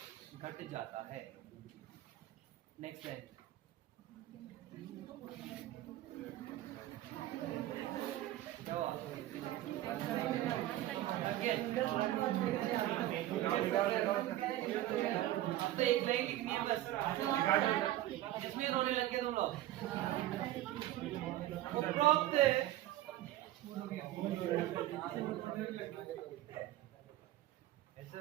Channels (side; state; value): left; quieter; 14.6 dB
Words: घट जाता है। नेक्स्ट है क्या Again. अब तो एक लाइन लिखनी है बस, इसमें रोने लग गए तुम लोग। उपरोक्त ऐसे